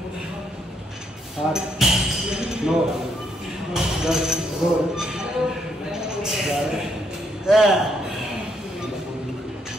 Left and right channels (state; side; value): normal; both; correlation 0.74